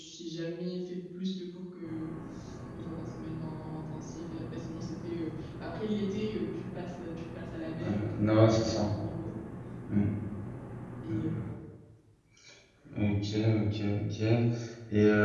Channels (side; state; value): both; identical; correlation 1.00